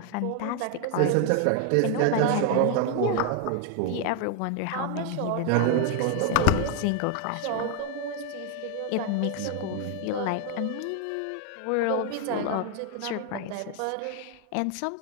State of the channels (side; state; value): both; different; correlation 0.00